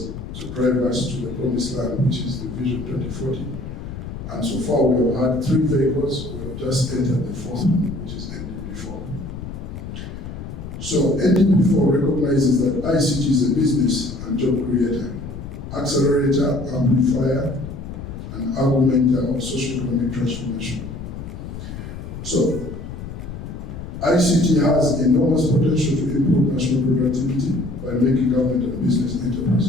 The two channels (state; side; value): noise; left; rumble, 10 dB below the sound